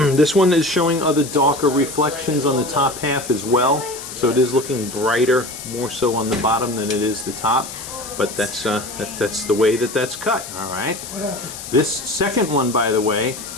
This one is showing other darker reflections on the top half as well, so it is looking brighter, more so on the bottom than it is the top. But that's the way that's cut. All right. This second one, by the way,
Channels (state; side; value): noise; left; hiss, 11 dB below the sound